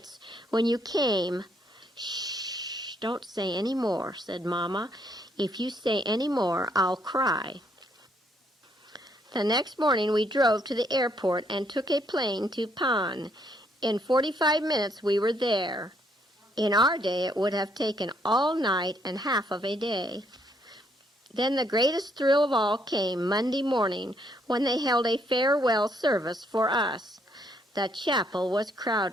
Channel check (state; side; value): normal; both; correlation 0.71